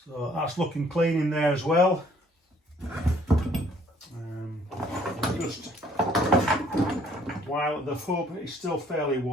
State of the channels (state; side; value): normal; both; correlation 0.61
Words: So that's looking clean in there as well. Just while the hub is still fairly